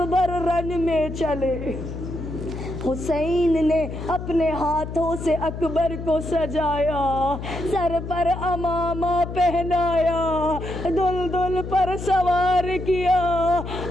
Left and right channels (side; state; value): left; noise; hum, 8 dB below the sound